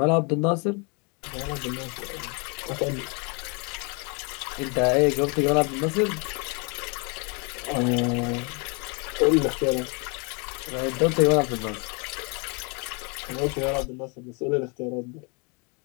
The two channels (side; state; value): right; quieter; 33.4 dB